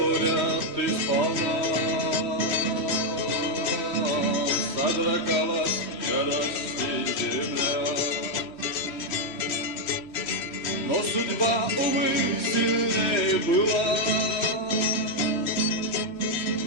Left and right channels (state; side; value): late; right; 3.2 ms